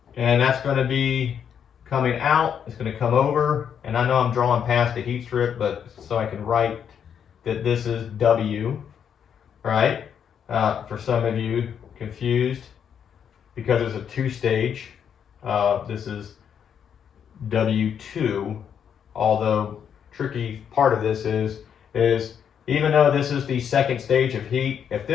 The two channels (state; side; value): quieter; right; 8.1 dB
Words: And that's going to be coming out, it's going to come over, and I know I'm drawing past the heat strip, but so I can write that this is W, right? For some of you confused, because it's a two-stage, this is W2, although tricky part of this is even though this is the second stage of heat, if